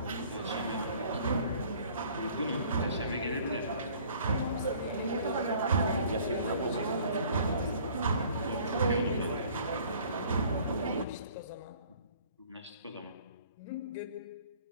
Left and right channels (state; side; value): inverted; both; correlation -0.54